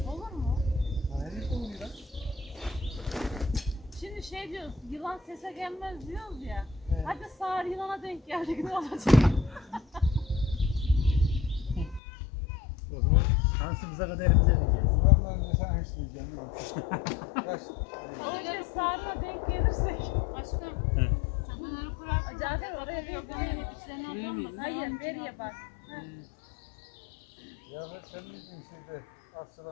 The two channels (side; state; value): right; drops out; at 12.0 s